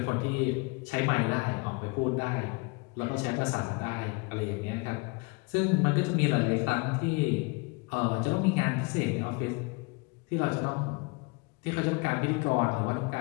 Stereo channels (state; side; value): quieter; right; 29.1 dB